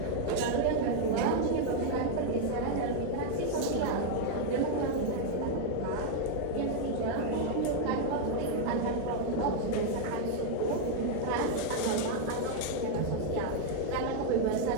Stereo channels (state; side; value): different; both; correlation 0.00